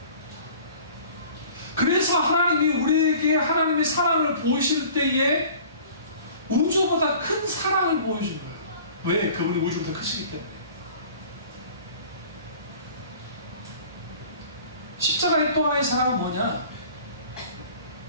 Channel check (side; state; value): both; inverted; correlation -0.47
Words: 그래서 하나님이 우리에게 하나님의 사랑을 보이실 때에 우주보다 큰 사랑을 보여준 거예요. 왜? 그분이 우주보다 크시기 때문에. 십자가의 또 하나의 사랑은 뭐냐?